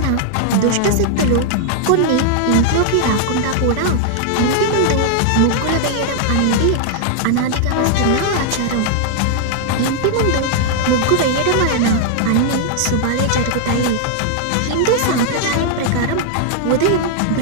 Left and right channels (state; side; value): different; both; correlation -0.01